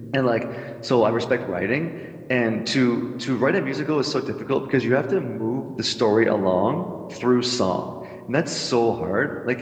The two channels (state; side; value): identical; both; correlation 1.00